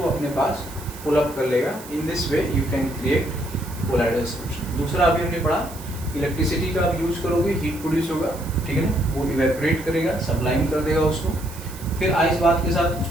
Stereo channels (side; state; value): right; noise; hiss, 16 dB below the sound